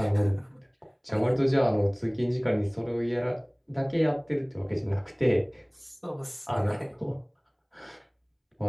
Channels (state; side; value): identical; both; correlation 1.00